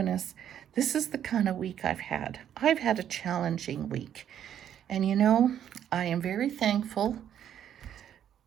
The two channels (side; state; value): left; quieter; 9.9 dB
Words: This is the kind of week I've had. I've had a challenging week. And you know, I am very thankful